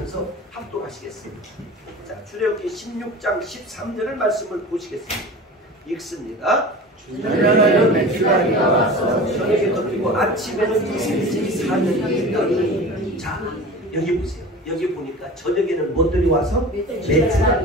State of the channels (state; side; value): normal; both; correlation 0.36